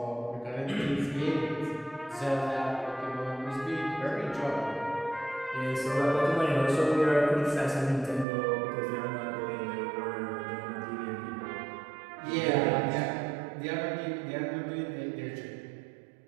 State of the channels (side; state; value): left; drops out; at 8.2 s